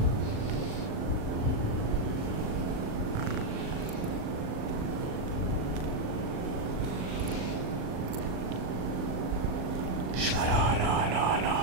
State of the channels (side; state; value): left; late; 39 ms